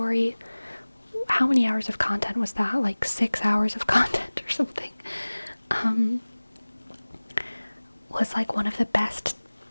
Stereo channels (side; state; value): both; inverted; correlation -1.00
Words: how many hours of content was that? Like 6 hours of content or something. Was like one of the best